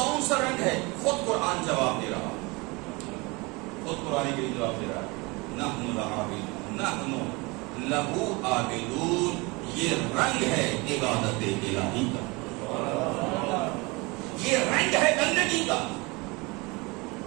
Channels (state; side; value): quieter; left; 25.9 dB